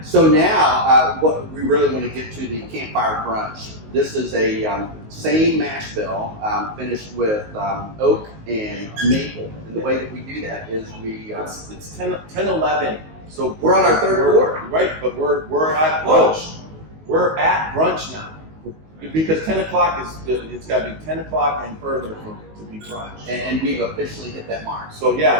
So now, what we really want to get to the campfire brunch. This is a same mash bill finished with oak and maple. And the way that we do that is we It's 10:11. So we're on our third quart. Right, but we're at brunch. We're at brunch now. Because 10 o'clock it's got to be 10 o'clock and further to be brunch. And we've officially hit that mark. So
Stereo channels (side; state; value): left; late; 19 ms